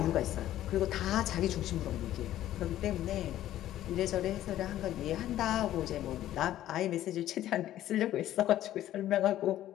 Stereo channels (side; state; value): right; quieter; 13.1 dB